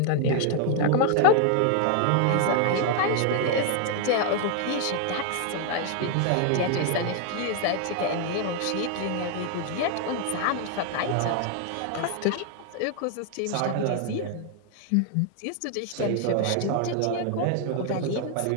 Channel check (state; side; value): different; both; correlation 0.00